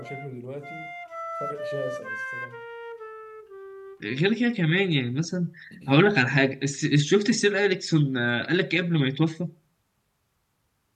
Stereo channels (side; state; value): both; identical; correlation 1.00